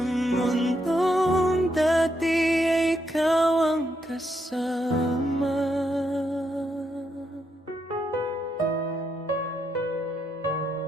dati ay ikaw ang kasama?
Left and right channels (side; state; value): both; normal; correlation 0.79